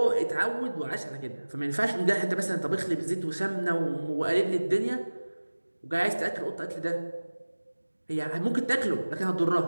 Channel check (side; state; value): both; inverted; correlation -1.00